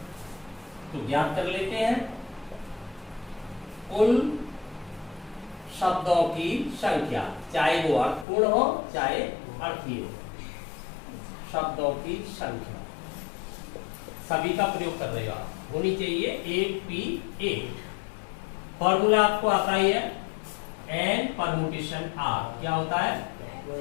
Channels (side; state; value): right; drops out; at 8.2 s